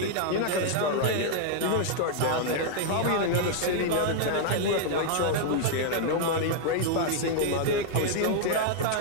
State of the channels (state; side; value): different; both; correlation 0.00